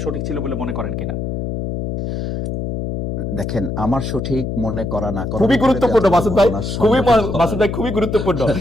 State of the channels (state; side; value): noise; left; hum, 4 dB below the sound